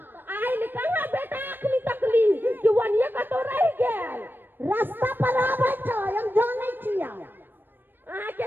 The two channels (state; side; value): late; left; 0.095 ms